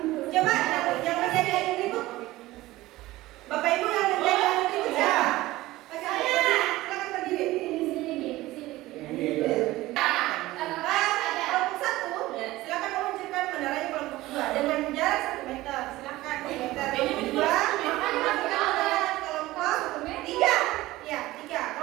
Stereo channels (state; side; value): quieter; left; 17.7 dB